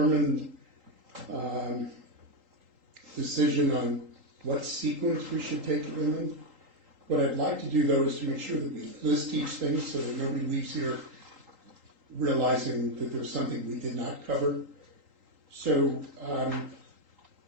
decision on what sequence we should take them in. What I'd like to do, though, is to make sure that we list each thing so that nobody leaves here realizing that there's something we did not cover. So I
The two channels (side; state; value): left; late; 3.8 ms